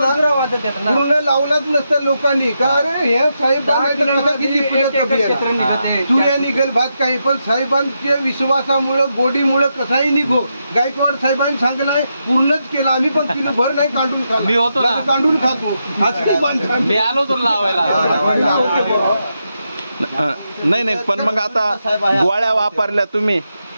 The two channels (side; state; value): both; inverted; correlation -0.84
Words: लावलाच नसतं लोकांनी. का अरे हे साहेबांना तुऱ्या निघेल भात काही, पण साहेबांच्या विश्वासामुळं गोडीमुळं कसाही निघो. गायकवाड साहेबांनी सांगलाय पूर्णच केलं. आम्ही पण किलो भर नाही काढून खातो, मी होतो ना, काढून खातो. मी आलो तर लावायला. नाही नाही, पण मग आता गोळ्या वापरल्या तुम्ही,